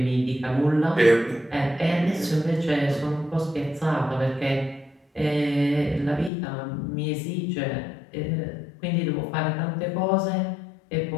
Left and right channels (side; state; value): right; drops out; at 6.3 s